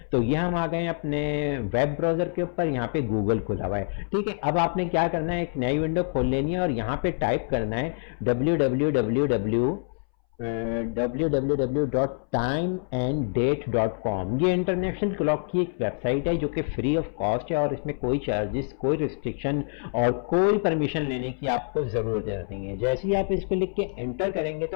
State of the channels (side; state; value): right; silent; 61 dB below the other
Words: तो ये हम आ गए अपने वेब ब्राउजर के ऊपर, यहाँ पे गूगल खुला हुआ है। ठीक है, अब आपने क्या करना है, एक नई विंडो खोल लेनी है और यहाँ पे टाइप करना है www.timeanddate.com। ये इंटरनेशनल क्लॉक की एक वेबसाइट है जो कि फ्री ऑफ कॉस्ट है और इसमें कोई चार्जेस, कोई रिस्ट्रिक्शन और कोई परमिशन लेने की आपको जरूरत नहीं है। जैसे ही आप इसको लिख के एंटर करेंगे